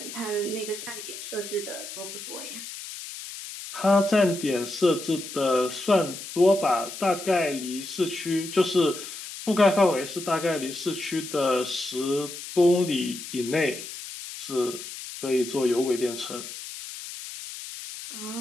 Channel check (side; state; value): left; noise; hiss, 10 dB below the sound